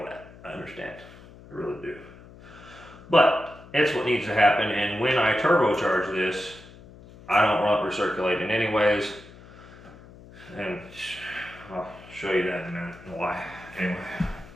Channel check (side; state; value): left; noise; hum, 20 dB below the sound